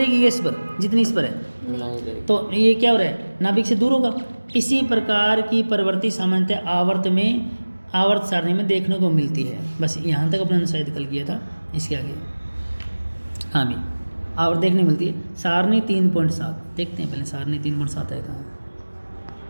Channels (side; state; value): both; inverted; correlation -1.00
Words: इस पर जितनी इस पर है, तो ये क्या हो रहा है, नाभिक से दूर होगा। इसी प्रकार की प्रवृत्ति सामान्यतः आवर्त सारणी में देखने को मिलती है। बस यहाँ तक अपने शायद कल किया था, इसके आगे हाँ भी आवर्त देखने मिलती है। सारणी 3.7 देखते हैं पहले, सारणी 3.7 है कहाँ,